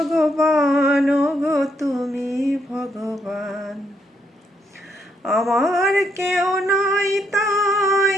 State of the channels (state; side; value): normal; both; correlation 0.75